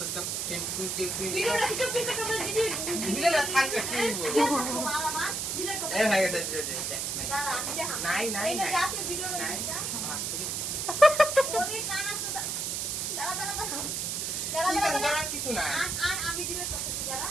ফ্রেন্ড ভিডিওটা কিছু পিকআপ করে দিলে থাকবে কি বলবো মালা মা ডিলিট করে এই ভাই এটা দাঁড়া আমি দেখা নাই নাই এটা নাই যাতে ভিডিওটা নাই যা আছে ওরে কানা সুদা দাঁড়া দাঁড়া দাঁড়া কি দাঁড়া দাঁড়া করার কিছু না আর আমি ডিলিট করতেছি দাঁড়া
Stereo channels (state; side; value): noise; right; hiss, 1 dB below the sound